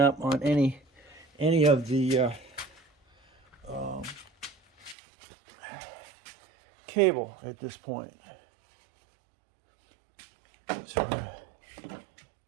on any of the cable at this point. So we're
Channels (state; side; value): drops out; left; at 5.0 s